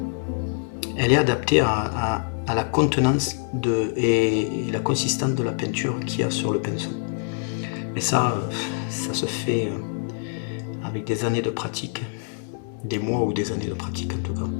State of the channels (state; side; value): silent; right; 62 dB below the other